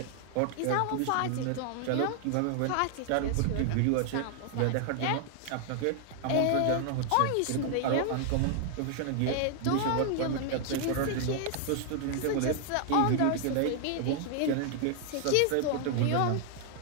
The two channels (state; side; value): different; both; correlation 0.00